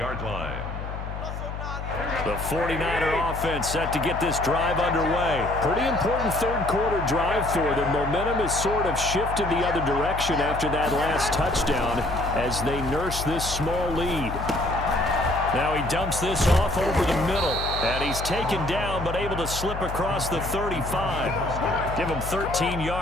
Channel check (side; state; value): left; noise; hum, 7 dB below the sound